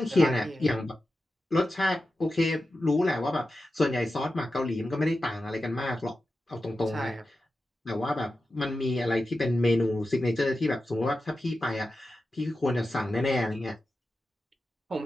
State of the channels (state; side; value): normal; both; correlation 0.92